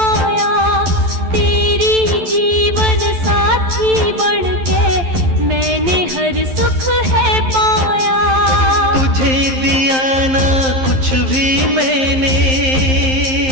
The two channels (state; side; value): late; left; 11 ms